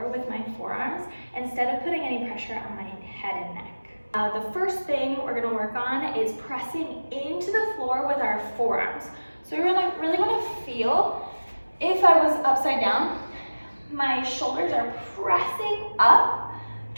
with my forearms instead of putting any pressure on my head and neck. The first thing we're going to work on is pressing into the floor with our forearms. So we really want to feel, if I was upside down, my shoulders are pressing up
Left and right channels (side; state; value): both; inverted; correlation -1.00